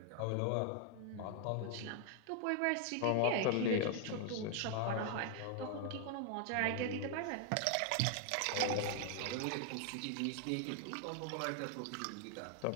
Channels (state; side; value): different; both; correlation 0.00